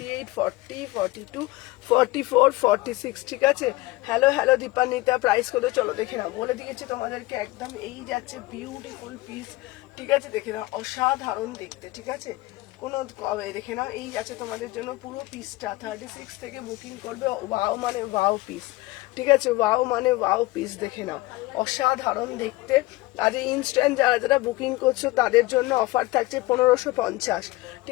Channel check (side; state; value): right; quieter; 19.7 dB